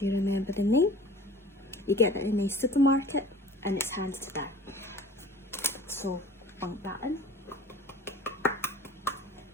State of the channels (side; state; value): both; normal; correlation 0.44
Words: you remember the name, you get it in a supermarket, and it's handed to that. So bunk that in.